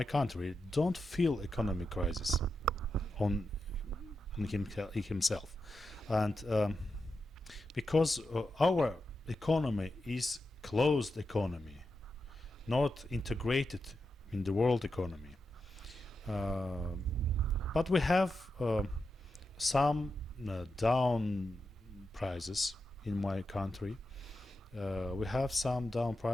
country don't feel economic crisis on himself, and because our economy is closed economy, not integrated in the world economy, but we have some down prices in my country. We have some down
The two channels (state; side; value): normal; both; correlation 0.88